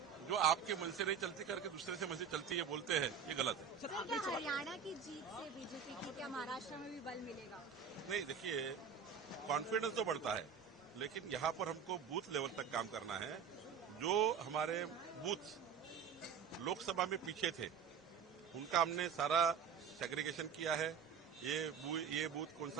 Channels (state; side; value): quieter; left; 6.9 dB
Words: जो आपके मन से नहीं चलती करके दूसरे से मन से चलती है बोलते हैं, ये गलत है। सर, क्या हरियाणा की जीत से बीजेपी की क्या महाराष्ट्र में भी बल मिलेगा? नहीं, देखिए, कॉन्फिडेंस तो बढ़ता है, लेकिन यहाँ पर हमको बूथ लेवल तक काम करना है। जो हमारे बूथ लोकसभा में पीछे थे, उनका हमने सारा सेग्रीगेशन किया है। ये बूथ कौन